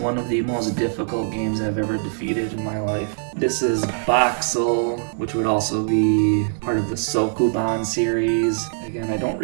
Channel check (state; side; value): silent; left; digital silence